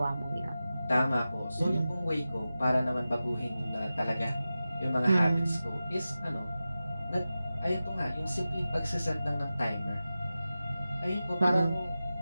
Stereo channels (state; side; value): inverted; both; correlation -0.94